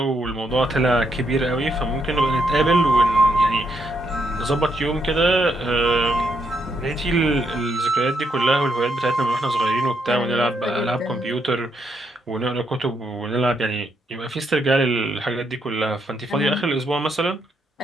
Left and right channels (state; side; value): normal; both; correlation 0.77